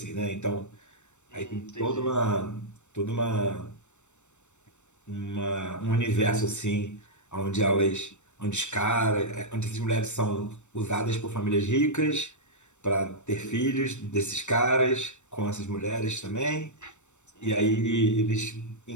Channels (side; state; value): right; late; 0.84 ms